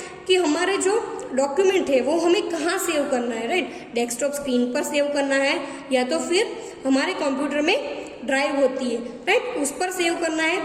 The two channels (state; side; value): identical; both; correlation 1.00